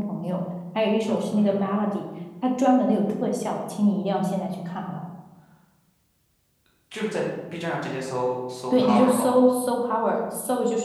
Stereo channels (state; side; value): identical; both; correlation 1.00